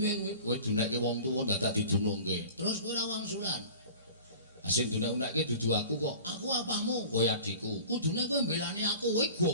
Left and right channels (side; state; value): both; inverted; correlation -0.42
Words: kuwi? Kowe dunekke wong tuwa dadak didunungke. Terus kowe ora wangsulan. Sing dunek-unekke dudu aku kok. Aku apamu? Kowe adikku. Kudune kowe mbelani aku, kowe